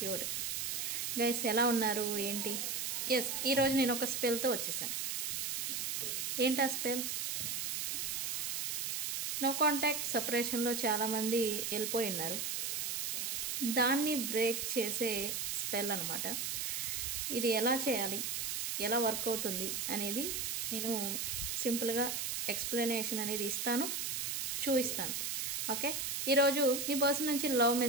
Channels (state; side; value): noise; right; hiss, 1 dB below the sound